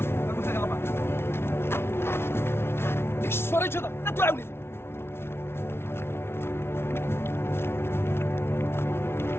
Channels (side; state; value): right; late; 0.12 ms